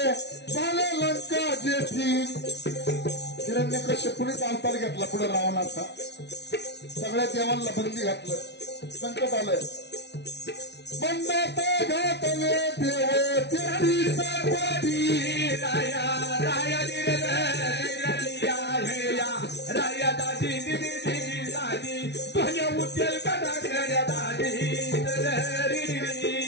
झाले लंका जेठी. हिरण्यकश्यपूनेच अवतार घेतला पुढे रावणाचा. सगळ्या देवांना बंदी घातलं. संकट आलंय. बंदात घातले देव तेरी सर्वाधी. राया राया राया दादी दिदी दादी तुझ्या उद्यल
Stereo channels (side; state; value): right; late; 0.50 ms